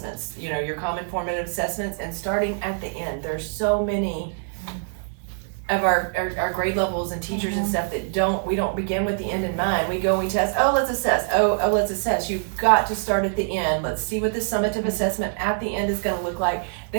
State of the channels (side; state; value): left; silent; 61 dB below the other